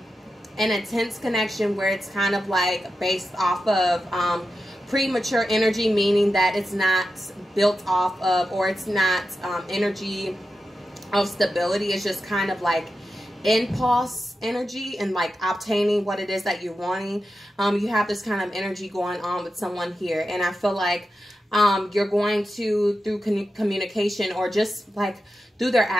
intense connection where it's kind of like based off of premature energy, meaning that it's not built off of, or it's not energy of stability. It's just kind of like impulse energy and like obtaining what it is that you're wanting. You have this kind of energy going on with someone here, and I feel like you're going to, through communication or just like through their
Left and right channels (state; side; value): normal; both; correlation 0.90